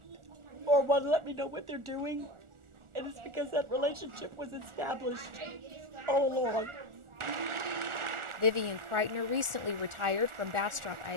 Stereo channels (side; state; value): left; late; 1.4 ms